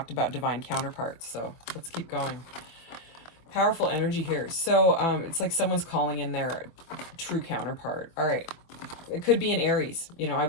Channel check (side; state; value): right; late; 24 ms